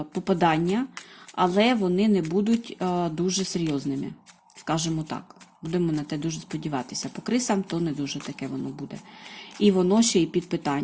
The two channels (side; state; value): both; identical; correlation 1.00